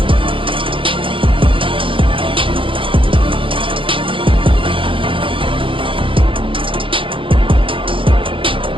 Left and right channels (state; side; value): late; left; 0.25 ms